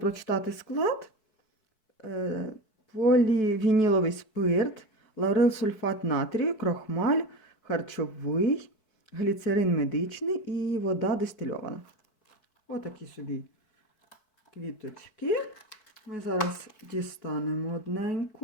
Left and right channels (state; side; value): late; right; 4.6 ms